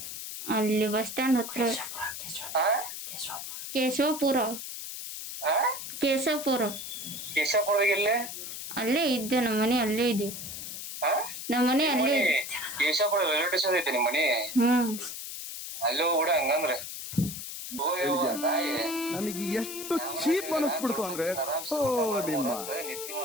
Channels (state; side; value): noise; left; hiss, 8 dB below the sound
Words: ಅಲ್ಲಿ ಬಸ್ ಸ್ಟ್ಯಾಂಡ್ ಹತ್ರ. ಕೇಶವಪುರ. ಅಲ್ಲೇ ಇದ್ದೆ, ನಮ್ಮ ಮನೆ ಅಲ್ಲೇ ಇದೆ. ನಮ್ಮ ಮನೆ ಅಲ್ಲೇ ಇದೆ. ಕೇಶವಪುರ ರೈಲ್ವೆ ಸ್ಟೇಷನ್ ಐತೆ ನಿಮ್ಮ ಮನೆ? ಅಲ್ಲೋ ಕೂಡ ಹಂಗಂದ್ರೆ ನನಗೆ ಎಷ್ಟು ಚೀಪ್ ಅನಿಸ್ಬಿಡ್ತು ಅಂದ್ರೆ, ನಿಮ್ಮ